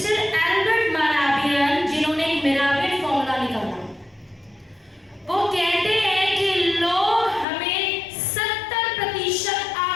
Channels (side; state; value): right; drops out; at 7.5 s